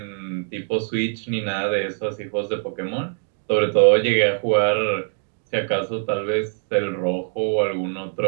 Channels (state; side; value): silent; left; digital silence